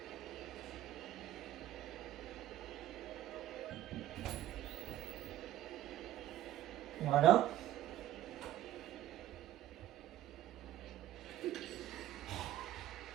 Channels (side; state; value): left; quieter; 13.3 dB